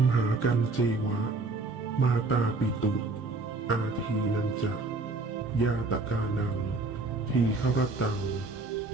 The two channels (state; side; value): quieter; left; 3.5 dB